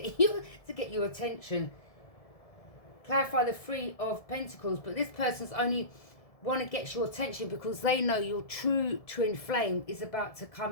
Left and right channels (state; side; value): late; right; 1.7 ms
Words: your attention. Clarify the Three of Pentacles, but this person's only want to get your attention because they know your true twin flame is about to